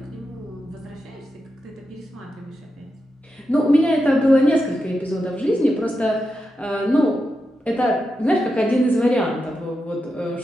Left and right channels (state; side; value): normal; both; correlation 0.88